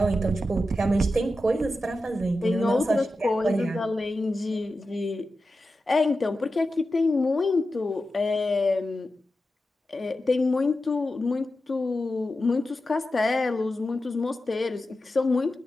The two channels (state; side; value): normal; both; correlation 0.91